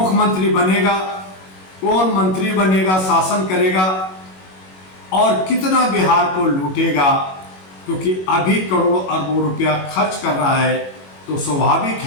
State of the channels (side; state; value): right; late; 21 ms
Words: बनेगा, कौन मंत्री बनेगा, शासन करेगा और कितना बिहार को लूटेगा। क्योंकि अभी करोड़ों अरबों रुपया खर्च कर रहा है तो स्वाभाविक